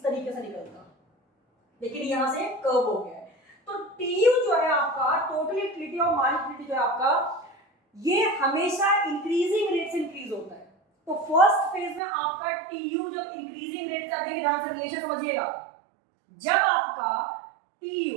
तरीके से निकलता, लेकिन यहां से कर्व हो गया है। तो TU जो है आपका, टोटल यूटिलिटी और मार्जिनल यूटिलिटी जो है आपका, ये हमेशा इंक्रीजिंग रेट से इंक्रीज होता है। तो फर्स्ट फेज में आपका TU जब इंक्रीजिंग रेट से, देखिए ध्यान से रिलेशन समझिएगा, जब आपका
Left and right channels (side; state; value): left; drops out; at 12.0 s